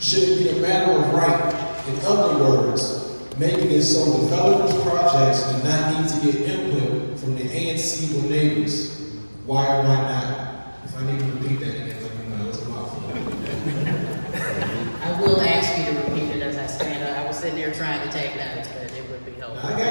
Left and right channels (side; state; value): both; inverted; correlation -1.00